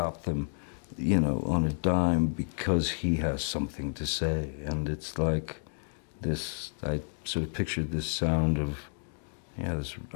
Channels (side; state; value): right; silent; digital silence